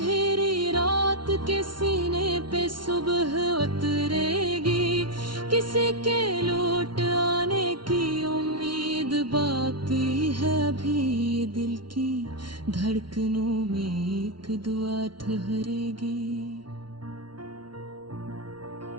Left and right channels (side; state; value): left; late; 0.72 ms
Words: रात के सीने पे सुबह उतरेगी। किसी के लौट आने की उम्मीद बाकी है अभी, दिल की धड़कनों में एक दुआ ठहरेगी।